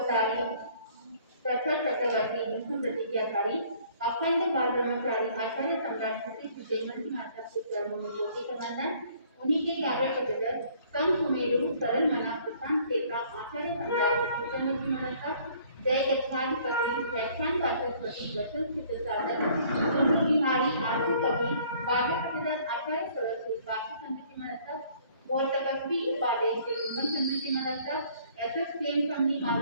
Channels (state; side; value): inverted; both; correlation -0.58